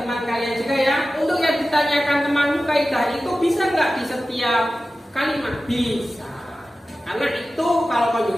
kalian juga ya. Untuk yang ditanyakan teman muka kaidah itu bisa nggak di setiap kalimat? Bisa. Karena itu kalau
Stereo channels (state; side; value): normal; both; correlation 0.95